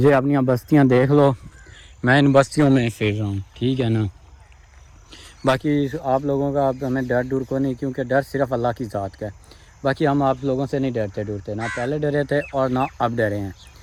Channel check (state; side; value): identical; both; correlation 1.00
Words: اپنی بستیاں دیکھ لو، میں ان بستیوں میں پھر رہا ہوں، ٹھیک ہے نا۔ باقی آپ لوگوں کا اب ہمیں ڈر ڈور کو نہیں، کیونکہ ڈر صرف اللہ کی ذات کا ہے۔ باقی ہم آپ لوگوں سے نہیں ڈرتے، نہ پہلے ڈرے تھے اور نہ اب ڈرے ہیں،